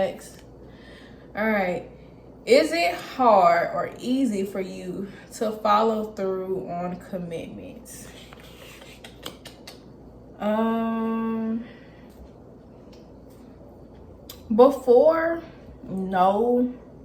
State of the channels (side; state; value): both; identical; correlation 1.00